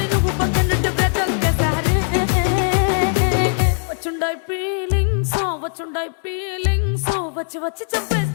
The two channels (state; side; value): silent; right; 66 dB below the other